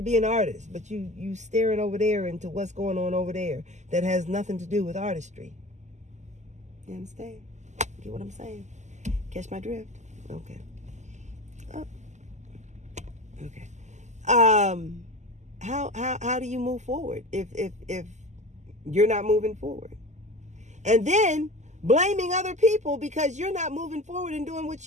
be an artist, but you staring over there into what's going on over there that has nothing to do with artistry. You understand? Get what I'm saying? Catch my drift? Okay. Oh. Okay. How do you move forward if you're not moving forward? And then blaming other people because you're not moving forward and doing what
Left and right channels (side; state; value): left; late; 0.34 ms